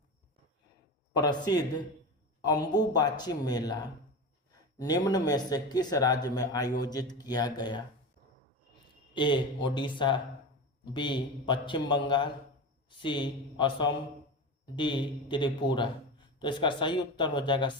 प्रसिद्ध अंबुबाची मेला निम्न में से किस राज्य में आयोजित किया गया? ए ओडिशा, बी पश्चिम बंगाल, सी असम, डी त्रिपुरा। तो इसका सही उत्तर हो जाएगा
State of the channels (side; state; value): both; normal; correlation 0.25